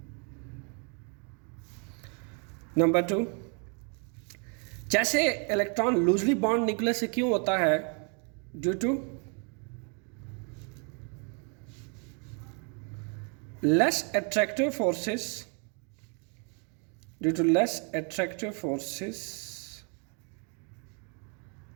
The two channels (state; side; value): quieter; left; 37.6 dB